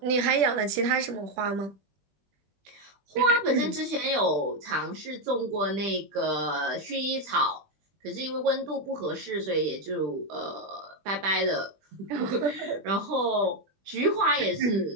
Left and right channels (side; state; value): left; late; 20 ms